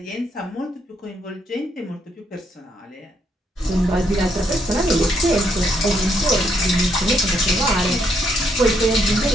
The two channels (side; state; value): both; normal; correlation 0.74